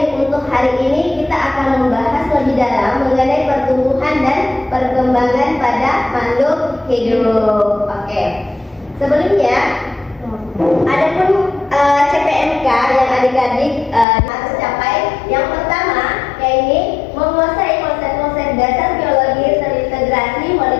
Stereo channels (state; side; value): drops out; right; at 14.1 s